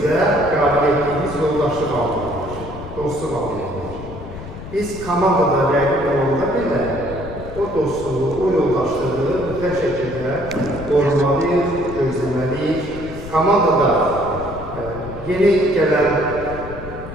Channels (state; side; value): noise; left; rumble, 12 dB below the sound